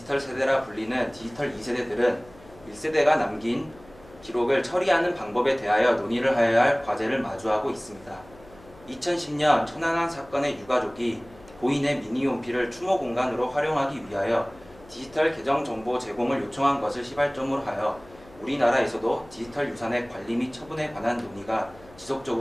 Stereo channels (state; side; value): noise; left; hum, 23 dB below the sound